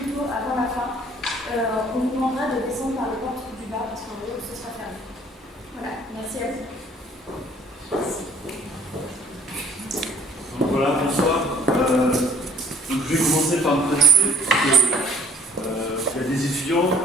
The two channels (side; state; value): both; normal; correlation 0.57